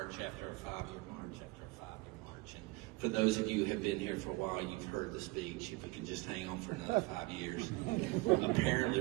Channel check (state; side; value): quieter; left; 22.7 dB